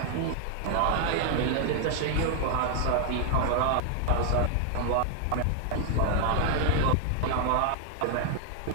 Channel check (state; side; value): different; both; correlation 0.00